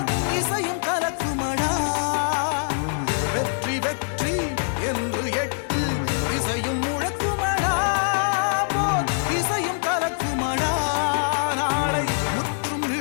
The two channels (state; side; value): silent; right; 63 dB below the other